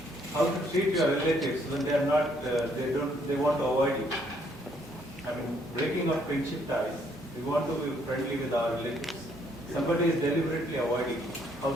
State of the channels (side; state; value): both; normal; correlation 0.68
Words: treat your relatives when they are not, they want to avoid you? I mean, breaking of friendship ties. We want to be friendly with our relatives. Somebody is deliberately avoiding you. How we